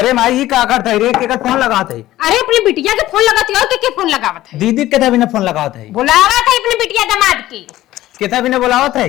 माई का करत है रे के फोन लगात है। अरे अपनी बिटिया के फोन लगाती हो के फोन लगावत है दीदी के भी फोन लगावत है बुलावत है अपनी बिटिया दामाद की के भी बुलावत है।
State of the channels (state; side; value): quieter; right; 15.1 dB